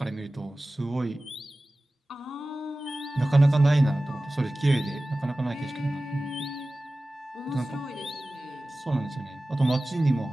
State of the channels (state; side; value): normal; both; correlation 0.97